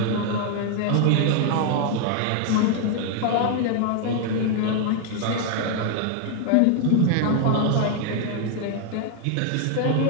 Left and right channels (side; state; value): both; different; correlation 0.00